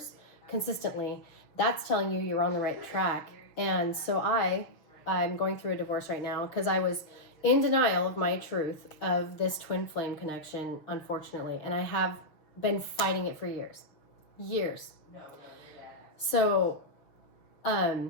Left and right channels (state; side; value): late; right; 6.4 ms